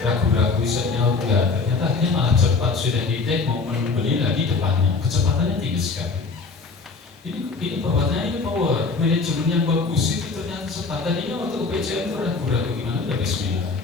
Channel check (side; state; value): right; quieter; 4.4 dB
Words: isanya enggak, ternyata akhirnya malah cepat sudah di-take mau membeli lagi depannya, kecepatannya tinggi sekali. Ini perbuatannya, ini power, manajemen yang bagus itu ternyata cepat. Tadinya waktu ke BCN itu ragu-ragu gimana, udah bismillah,